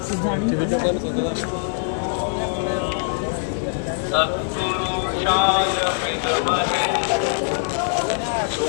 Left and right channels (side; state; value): right; silent; digital silence